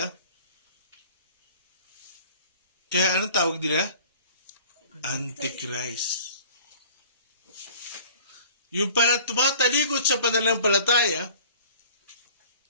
kaya anong tawag nila? Antichrist. Yung pala tumatalikod sa pananampalataya,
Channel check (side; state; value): both; inverted; correlation -0.47